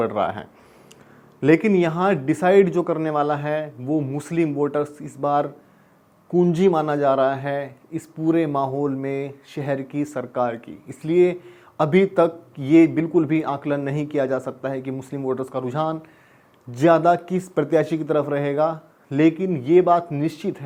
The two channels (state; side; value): identical; both; correlation 1.00